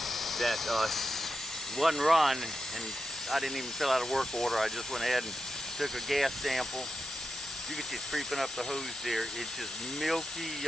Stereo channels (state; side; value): normal; both; correlation 0.89